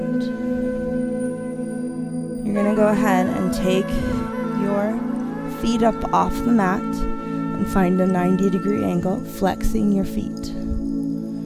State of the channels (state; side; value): identical; both; correlation 1.00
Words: You're going to go ahead and take your feet up off the mat and find a 90-degree angle, flexing your feet.